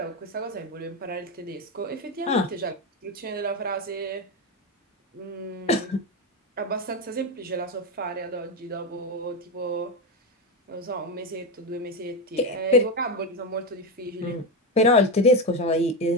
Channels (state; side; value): normal; both; correlation 0.13